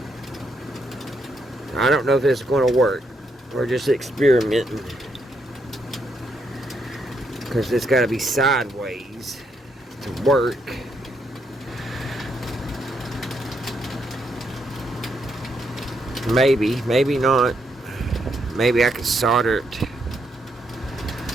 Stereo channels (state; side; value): normal; both; correlation 0.77